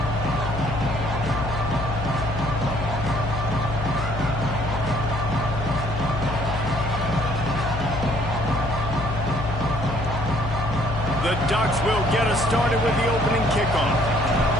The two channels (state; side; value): noise; left; hum, 5 dB below the sound